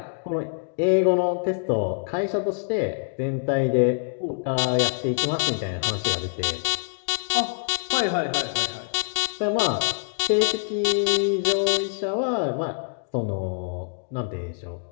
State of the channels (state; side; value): silent; right; digital silence